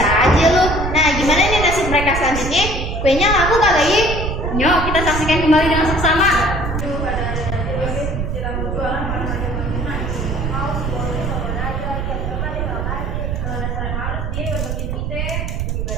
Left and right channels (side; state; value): right; noise; rumble, 2 dB below the sound